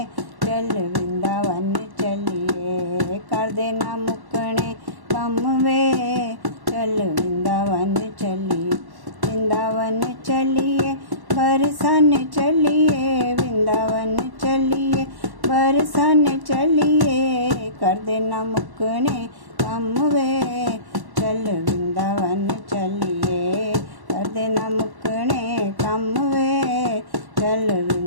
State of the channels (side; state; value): left; late; 1.1 ms